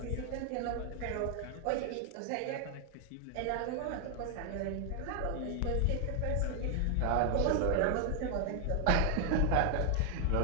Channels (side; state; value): both; different; correlation 0.00